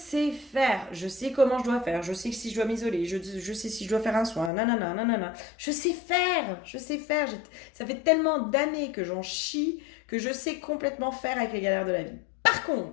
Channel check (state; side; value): drops out; right; at 4.5 s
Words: faire, je sais comment je dois faire, je sais si je dois m'isoler, je sais si je dois faire un soin, nanana, nanana. Je sais faire. Ça fait tellement d'années que j'en chie que je sais complètement faire avec les galères de la vie. Par